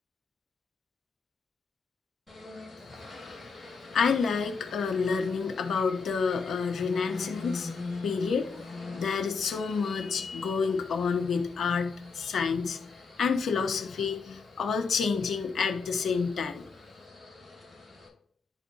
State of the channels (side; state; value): right; quieter; 5.1 dB